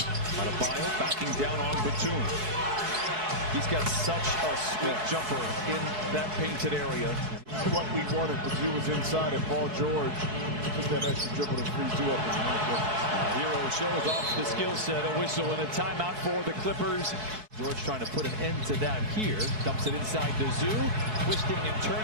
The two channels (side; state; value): left; late; 4.6 ms